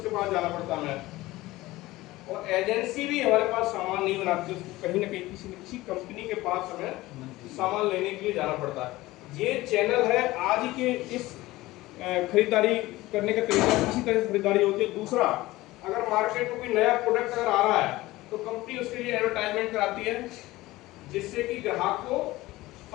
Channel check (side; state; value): right; quieter; 18.5 dB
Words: पास जाना पड़ता है हमें। और एजेंसी भी हमारे पास सामान नहीं बनाती, उसको कहीं ना कहीं किसी न किसी कंपनी के पास हमें सामान लेने के लिए जाना पड़ता है। ये चैनल है आज के इस खरीदारी करने का तरीका, इसी तरह से खरीदारी होती है। दूसरा, अगर मार्केट में कोई नया प्रोडक्ट अगर आ रहा है तो कंपनी उसके लिए एडवर्टाइजमेंट कराती है, जिससे कि ग्राहक को